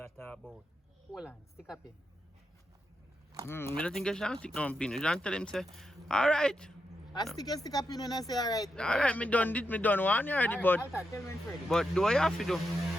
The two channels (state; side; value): normal; both; correlation 0.85